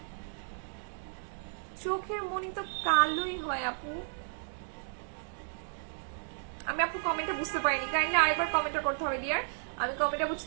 চোখের মনি তো কালোই হয় আপু। আমি আপু কমেন্টটা বুঝতে পারিনি, কাইন্ডলি আরেকবার কমেন্টটা করতে হবে ডিয়ার। আমি কমেন্টটা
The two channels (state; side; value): silent; left; digital silence